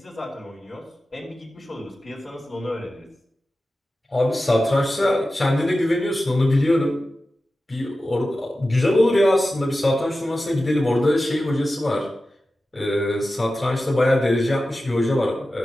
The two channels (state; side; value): normal; both; correlation 0.94